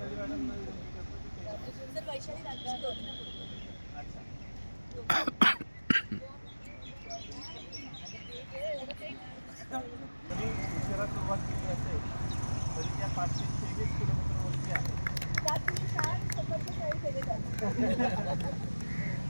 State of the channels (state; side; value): inverted; both; correlation -1.00